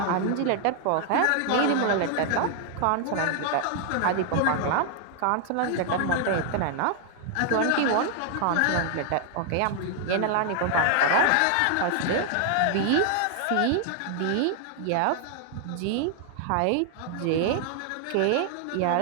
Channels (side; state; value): both; different; correlation 0.00